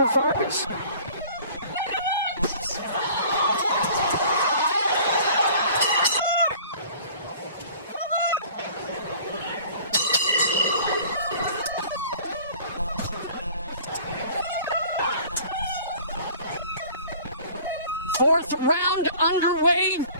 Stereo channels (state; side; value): inverted; both; correlation -0.48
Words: Vargas. Fourth round underway.